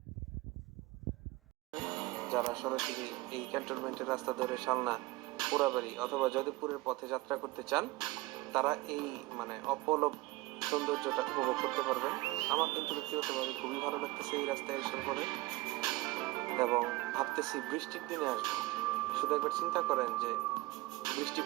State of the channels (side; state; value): left; quieter; 20.3 dB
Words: যারা সরাসরি এই ক্যান্টনমেন্টের রাস্তা ধরে শালনা, পোড়াবাড়ি অথবা যদবপুরের পথে যাত্রা করতে চান তারা এই অপলক সৌন্দর্যটা উপভোগ করতে পারবেন। আমার কিন্তু ব্যক্তিগতভাবে খুবই ভালো লাগতেছে এই রাস্তায় এসে পরে, এবং ভাবতেছি বৃষ্টির দিনে আসবো। শুধু একবার চিন্তা করেন যে বৃষ্টি